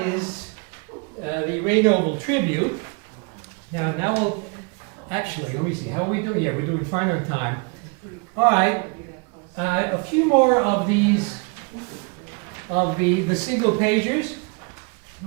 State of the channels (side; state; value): left; quieter; 32.8 dB